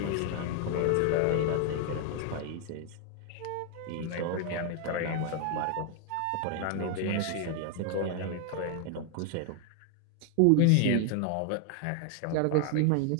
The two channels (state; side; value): different; both; correlation 0.00